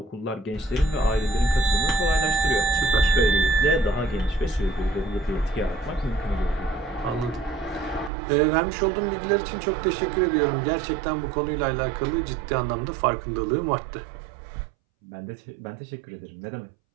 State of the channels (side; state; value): left; drops out; at 8.1 s